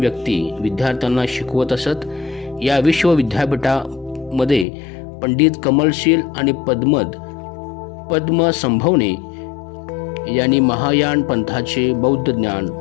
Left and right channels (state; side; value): drops out; right; at 4.7 s